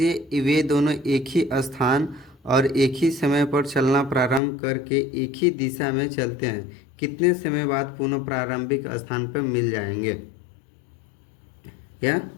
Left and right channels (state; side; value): drops out; right; at 4.4 s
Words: वे दोनों एक ही स्थान और एक ही समय पर चलना प्रारंभ करके एक ही दिशा में चलते हैं, कितने समय बाद पुनः प्रारंभिक स्थान पर मिल जाएंगे या